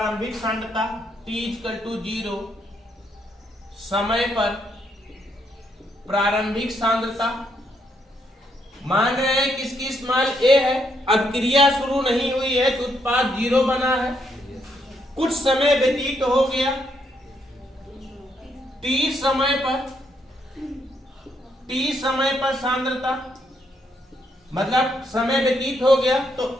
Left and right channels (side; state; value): both; normal; correlation 0.75